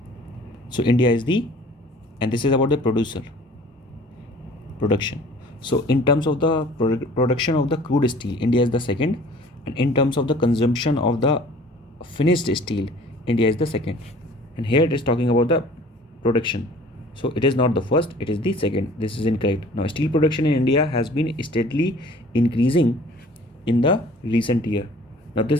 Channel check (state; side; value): normal; both; correlation 0.50